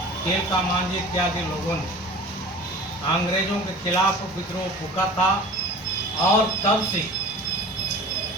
तिलका मांझी इत्यादि लोगों ने अंग्रेजों के खिलाफ विद्रोह फूका था और तब से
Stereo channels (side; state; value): both; normal; correlation 0.40